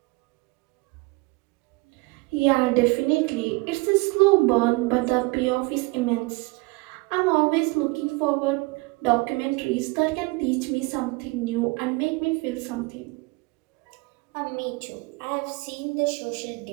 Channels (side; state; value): left; quieter; 25.3 dB